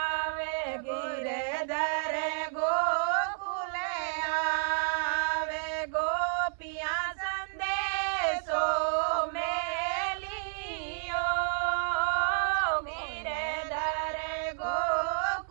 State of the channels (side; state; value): left; silent; 57 dB below the other